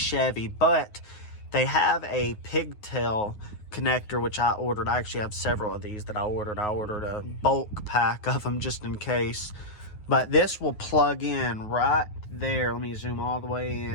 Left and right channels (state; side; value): late; right; 9.5 ms